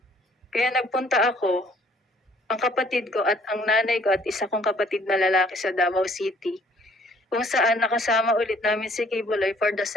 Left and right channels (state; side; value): normal; both; correlation 0.59